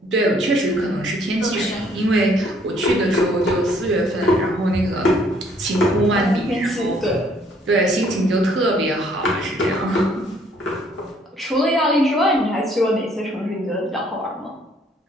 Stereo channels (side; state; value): both; normal; correlation 0.63